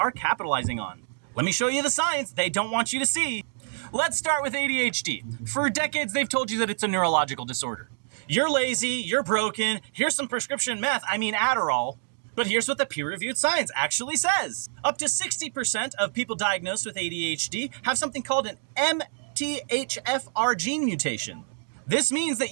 capitalizing on? Let me show you the science they don't want you to see. Let's start with ADHD. For decades, they've told you that it's a neurological disorder. You're lazy, you're broken, here's some prescription Adderall. But here's what the peer-reviewed science actually says. Up to 60% of people diagnosed with ADHD have something called an MTHFR gene mutation. This means that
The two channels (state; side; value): silent; left; digital silence